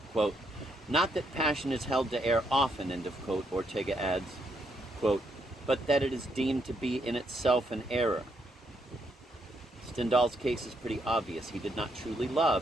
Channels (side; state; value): both; normal; correlation 0.75